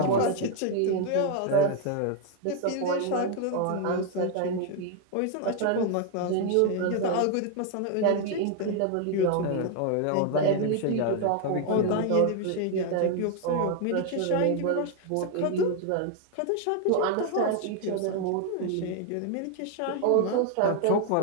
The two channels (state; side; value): different; both; correlation 0.00